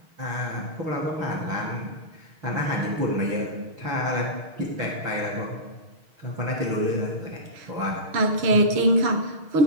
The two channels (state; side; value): late; left; 6.4 ms